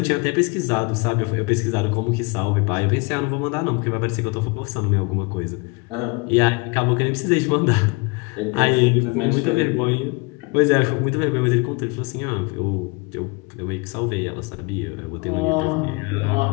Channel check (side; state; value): right; quieter; 28.9 dB